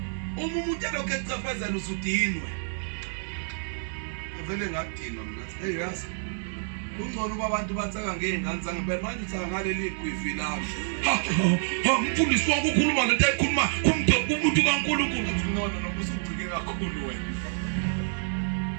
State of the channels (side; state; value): left; silent; 59 dB below the other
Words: umuntu lokho ecafazela usudinwe avele ngadinwa mina hey yazi kungcono uba abantu batsaka ngeingane zange phela manje utsaka ngaleli gwivi lami umfundisi wakho ukhuluma lento ayikhuluma kumuntu kaNkulunkulu uthi no usucike kakhulu wena